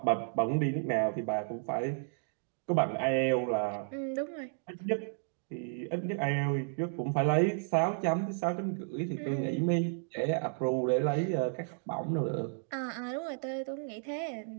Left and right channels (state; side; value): silent; left; digital silence